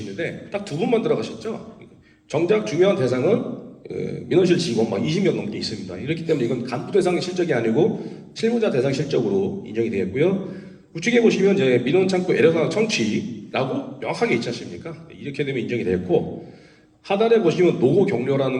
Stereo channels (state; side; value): identical; both; correlation 1.00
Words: 딱 2분만 들어가셨죠? 정작 중요한 대상은 민원실 직원 막 20명 넘게 있습니다. 이렇기 때문에 이건 간부 대상 실적이 아니고 실무자 대상 실적으로 인정이 되겠고요. 우측에 보시면 이제 민원 창구 애로사항 청취라고 명확하게 있지 않습니까? 이렇게 되면 인정이 됐고 하단에 보시면 노고